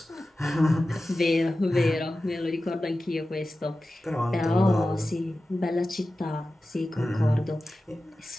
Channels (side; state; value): both; normal; correlation 0.94